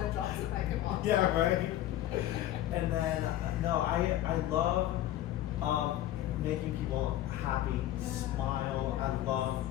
drops the mic and walks Yeah, off. right. And then no, I love making people happy, smile. I love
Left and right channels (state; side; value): quieter; right; 13.4 dB